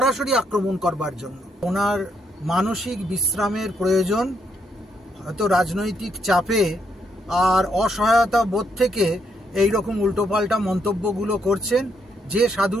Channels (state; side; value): normal; both; correlation 0.75